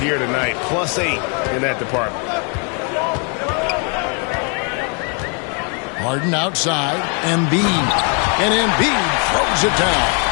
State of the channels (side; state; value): right; quieter; 37.7 dB